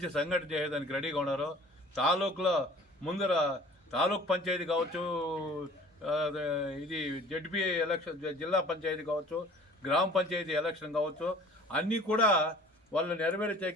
సంఘటన చేయడానికి రెడీగా ఉన్నారు. తాలూకులో ముందర తాలూకు పంచాయతీ కావచ్చు, ఇది జడ్పీ ఎలక్షన్, జిల్లా పంచాయతీ కావచ్చు, గ్రామ పంచాయతీ ఎలక్షన్ కావచ్చు, అన్నీ కూడా వాళ్ళు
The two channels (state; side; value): normal; both; correlation 0.48